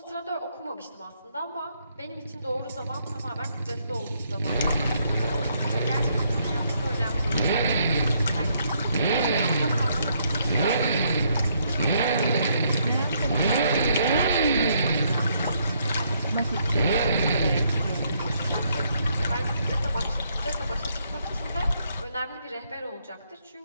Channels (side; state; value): both; inverted; correlation -0.72